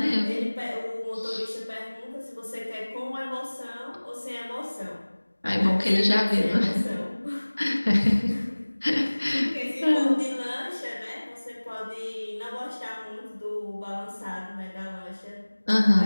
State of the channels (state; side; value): inverted; both; correlation -1.00